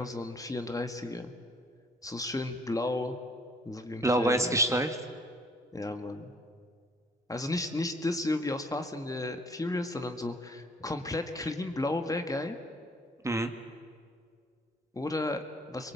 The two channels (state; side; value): normal; both; correlation 0.59